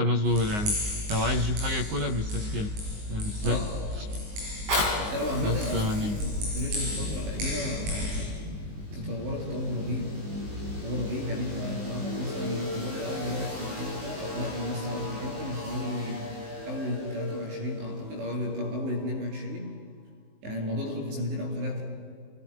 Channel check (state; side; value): late; left; 19 ms